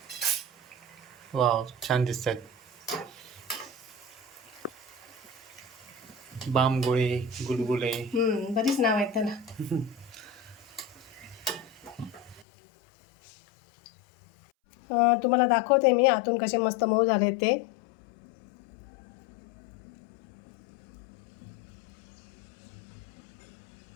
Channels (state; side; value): drops out; right; at 12.5 s